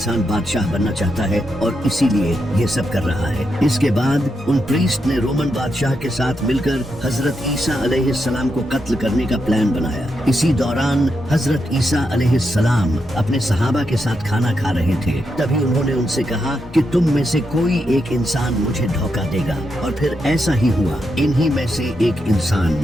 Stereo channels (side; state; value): both; normal; correlation 0.84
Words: बादशाह बनना चाहता है और इसीलिए ये सब कर रहा है। इसके बाद उन प्रीस्ट ने रोमन बादशाह के साथ मिलकर हजरत ईसा अलैहिस्सलाम को कत्ल करने का प्लान बनाया। इसी दौरान हजरत ईसा अलैहिस्सलाम अपने सहाबा के साथ खाना खा रहे थे। तभी उन्होंने उनसे कहा कि तुम में से कोई एक इंसान मुझे धोखा देगा, और फिर ऐसा ही हुआ। इन्हीं में से एक इंसान